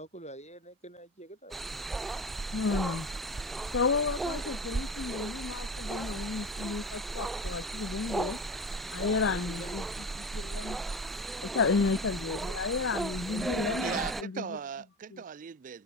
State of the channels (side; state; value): both; normal; correlation 0.31